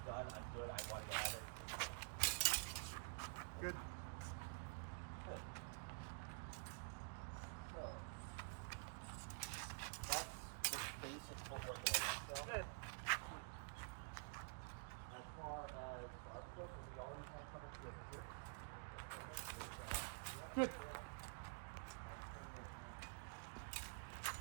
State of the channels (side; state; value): left; silent; digital silence